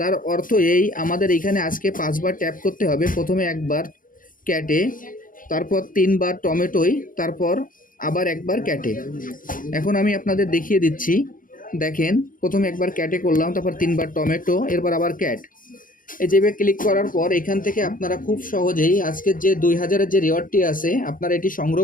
অর্থ এই আমাদের এইখানে আজকে 5বার ট্যাপ করতে হবে। প্রথমে একবার ক্যাটে, তারপর 3বার টমেটোয়, তারপর আবার একবার ক্যাটে। এখন আমি আপনাদের দেখিয়ে দিচ্ছি। দেখেন প্রথমে একবার ক্যাটে করলাম, তারপর 3বার টমেটো, এরপর আবার ক্যাট। এই যেভাবে ক্লিক করার পর এখান থেকে আপনারা খুব সহজেই আজকের যে 2000-এর যে রিওয়ার্ডটি আছে আপনারা এটি সংগ্রহ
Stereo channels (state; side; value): late; right; 0.40 ms